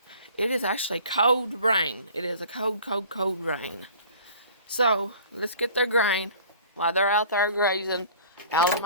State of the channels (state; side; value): inverted; both; correlation -0.47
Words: it is actually cold rain. It is a cold rain. So, let's get their grain while they're out there grazing, out of